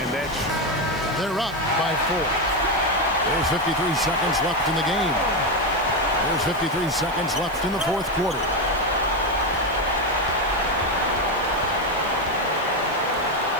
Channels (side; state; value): left; noise; hiss, 22 dB below the sound